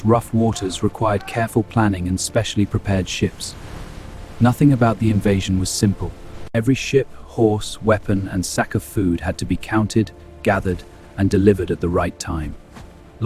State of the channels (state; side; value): identical; both; correlation 1.00